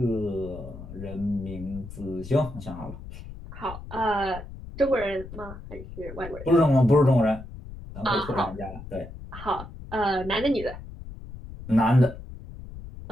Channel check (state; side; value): noise; left; rumble, 13 dB below the sound